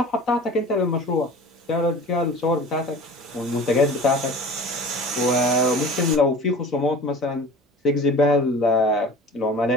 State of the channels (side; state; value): both; normal; correlation 0.40